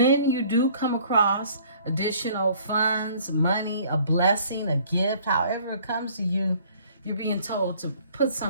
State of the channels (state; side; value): inverted; both; correlation -0.56